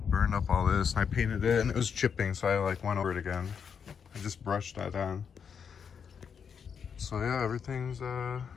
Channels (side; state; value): right; quieter; 6.9 dB